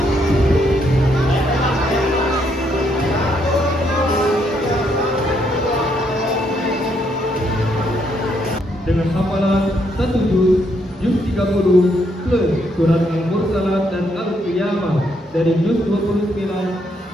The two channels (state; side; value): normal; both; correlation 0.74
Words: dengan hafalan 1 juz 30 plus surat Al-Mursalat dan Al-Qiyamah dari juz 29